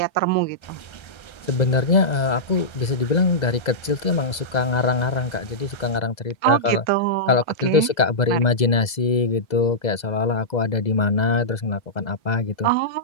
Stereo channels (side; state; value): right; late; 2.0 ms